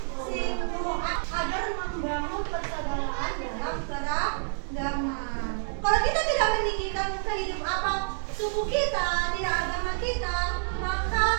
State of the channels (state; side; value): silent; left; digital silence